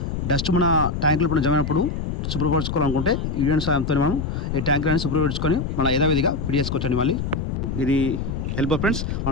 డస్ట్ మన ట్యాంకులు ఇప్పుడు జమైనప్పుడు శుభ్రపరచుకోవాలనుకుంటే యూనియన్ సాయంతో మనం ఈ ట్యాంకులను శుభ్రపరచుకొని మళ్ళీ యథావిధిగా ఫిట్ చేసుకోవచ్చండి. మళ్ళీ ఇది ఎల్బో ఫ్రెండ్స్.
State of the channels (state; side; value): noise; left; rumble, 3 dB below the sound